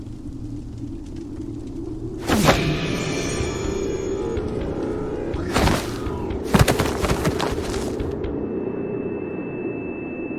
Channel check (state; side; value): identical; both; correlation 1.00